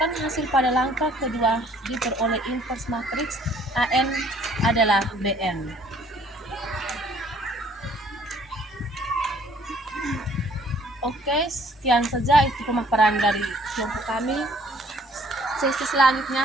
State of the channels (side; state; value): both; normal; correlation 0.59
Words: hasil pada langkah kedua diperoleh inverse matriks AN adalah BN. Oke, sekian saja itu pemaparan dari kelompok kami. Sesi